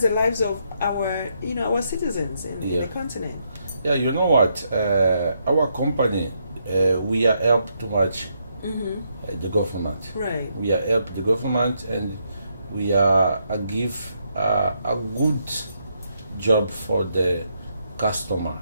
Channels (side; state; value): both; inverted; correlation -0.77